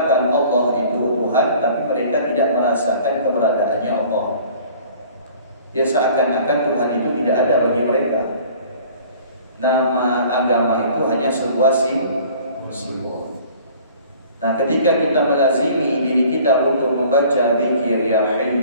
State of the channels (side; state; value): both; inverted; correlation -0.50